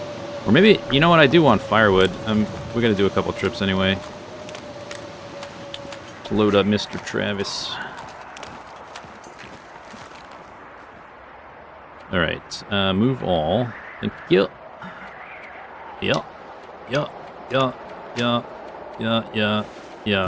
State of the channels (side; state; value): both; identical; correlation 1.00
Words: Or maybe, you know what, I do want firewood. We're going to do a couple trips anyway. Let's load up Mr. Travis. Alright, move all. Thank you. Yeah. Yeah. Yeah. Yeah. Yeah. Yeah.